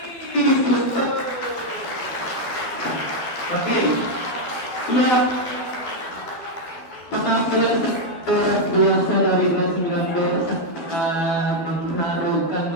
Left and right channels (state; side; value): late; right; 12 ms